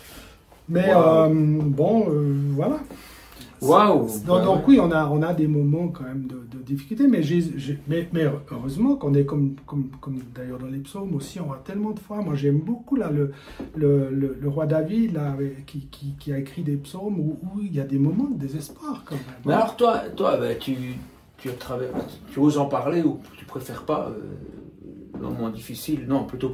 Bon, voilà. Mais voilà. Waouh! Donc oui, on a des moments quand même de difficulté, mais heureusement qu'on est comme d'ailleurs dans les psaumes aussi, on a tellement de fois. Moi, j'aime beaucoup là le roi David là, qui a écrit des psaumes où il y a des moments de désespoir quand même. Mais alors toi tu oses en parler ou tu préfères pas le moment difficile? Non, plutôt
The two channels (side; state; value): both; identical; correlation 1.00